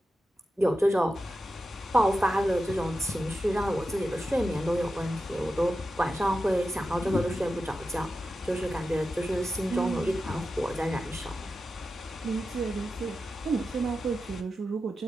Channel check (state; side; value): normal; both; correlation 0.91